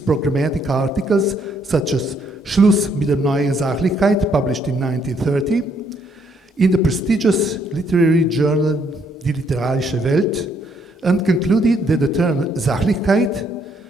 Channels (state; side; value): normal; both; correlation 0.70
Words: articles such as Schluss mit der neuen Sachlichkeit, published in 1930, in the prestigious literary journal Die literarische Welt, and concluded that the term Sachlichkeit